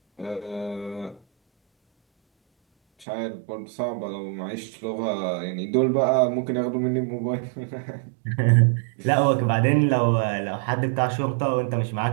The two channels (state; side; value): drops out; left; at 3.1 s